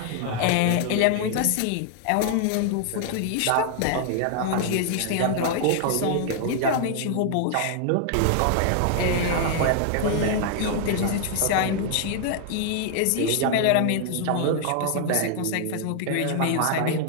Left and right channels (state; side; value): different; both; correlation 0.00